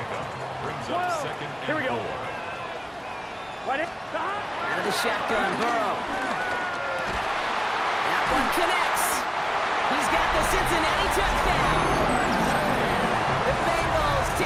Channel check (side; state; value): both; identical; correlation 1.00